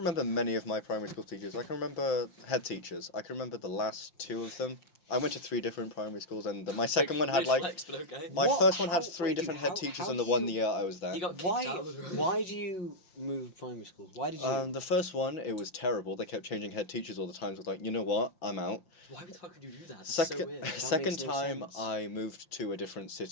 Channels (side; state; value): right; late; 5.8 ms